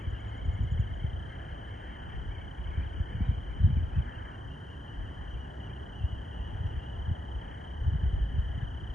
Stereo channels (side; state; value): both; normal; correlation 0.83